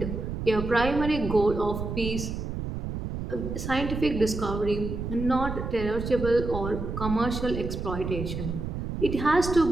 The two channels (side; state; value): right; noise; rumble, 5 dB below the sound